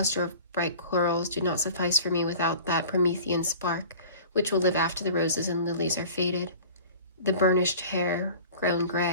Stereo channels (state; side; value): inverted; both; correlation -0.43